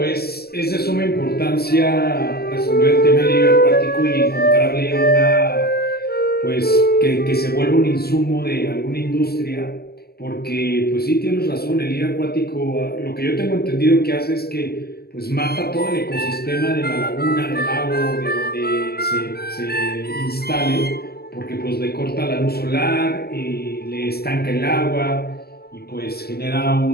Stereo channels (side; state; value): right; late; 0.46 ms